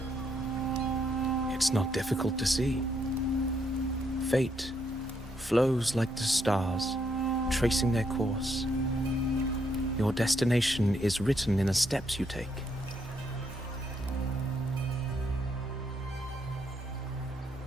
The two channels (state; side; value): normal; both; correlation 0.75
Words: It's not difficult to see. Fate flows like the stars, tracing their course. Your destination is written in the steps you take.